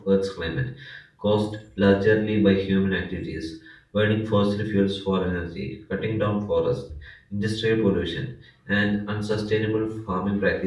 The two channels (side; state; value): both; identical; correlation 1.00